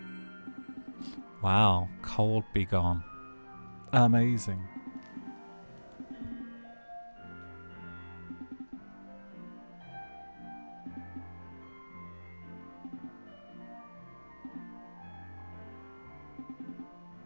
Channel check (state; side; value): inverted; both; correlation -1.00